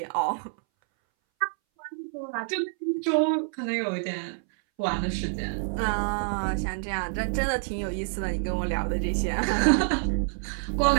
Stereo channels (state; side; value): silent; left; 60 dB below the other